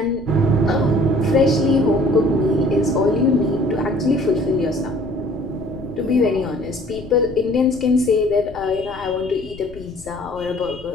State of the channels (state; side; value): noise; left; rumble, 19 dB below the sound